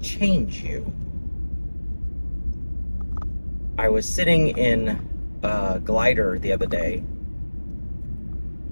change you. I was sitting in a glider the other day,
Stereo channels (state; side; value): inverted; both; correlation -1.00